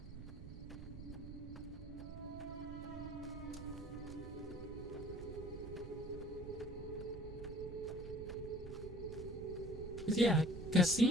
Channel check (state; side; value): noise; right; rumble, 10 dB below the sound